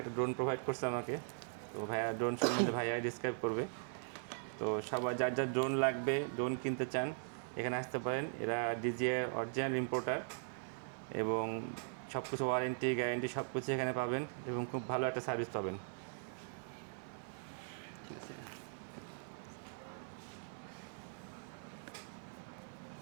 একটা ড্রোন প্রোভাইড করছে আমাকে। তো ভাইয়া ড্রোন সম্বন্ধে ভাইয়া ডিসক্রাইব করবে। তো সবার যার যার ড্রোন লাগবে, ড্রোন কিনতে চান, এখানে আসতে পারেন। এরা DJI অরিজিনাল ইম্পোর্টার এবং সব কিছু ওয়ারেন্টি গ্যারেন্টি সব কিছু এখানে পাবেন এবং খুব ভালো একটা সার্ভিস পাবেন।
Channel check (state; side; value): silent; left; 51 dB below the other